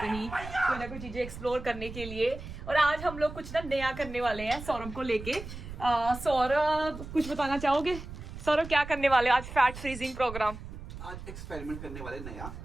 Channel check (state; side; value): noise; right; rumble, 11 dB below the sound